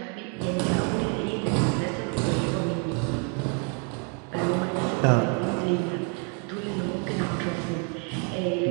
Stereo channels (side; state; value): left; quieter; 36.5 dB